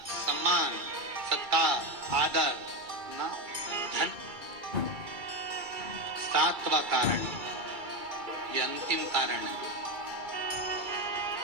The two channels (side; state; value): left; late; 2.3 ms